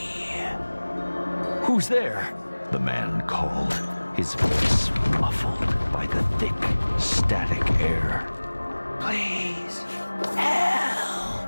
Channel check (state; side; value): inverted; both; correlation -1.00